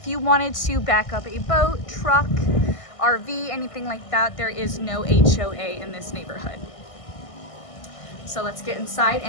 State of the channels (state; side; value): late; right; 1.5 ms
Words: you wanted to back up a boat, truck, RV, anything like that, there is no HOA in this neighborhood. So let's get inside